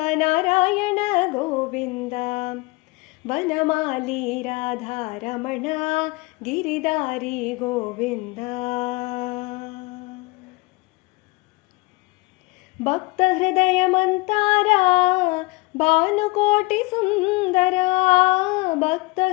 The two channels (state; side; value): quieter; right; 24.1 dB